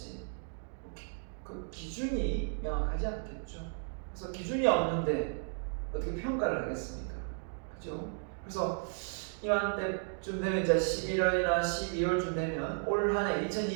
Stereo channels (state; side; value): silent; left; 55 dB below the other